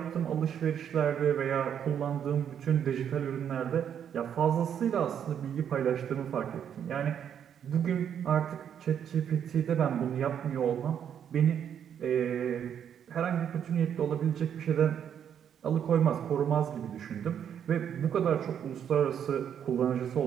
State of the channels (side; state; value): left; quieter; 8.8 dB